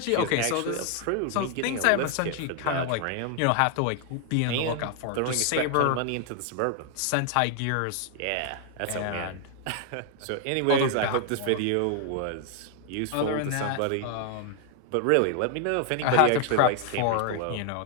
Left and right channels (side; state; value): both; different; correlation 0.00